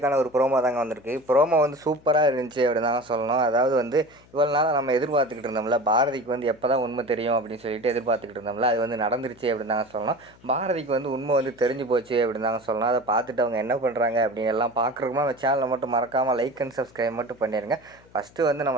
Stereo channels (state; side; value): noise; left; hum, 27 dB below the sound